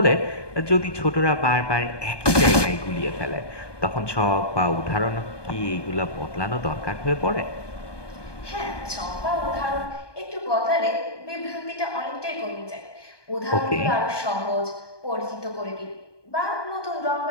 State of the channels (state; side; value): late; right; 1.2 ms